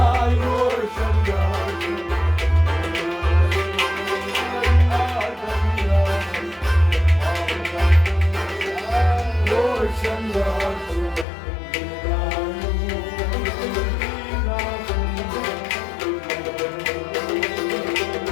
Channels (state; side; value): drops out; right; at 11.2 s